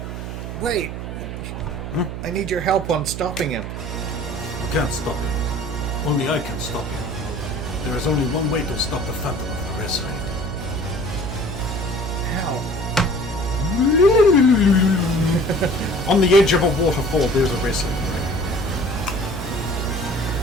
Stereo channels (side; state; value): right; noise; hum, 7 dB below the sound